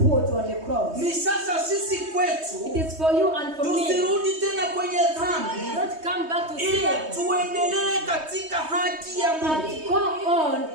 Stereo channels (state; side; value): late; left; 3.2 ms